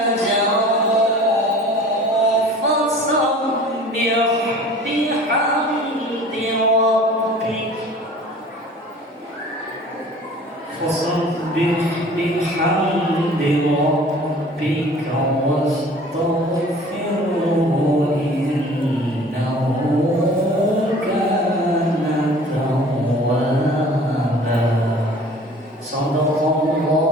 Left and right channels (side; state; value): both; normal; correlation 0.46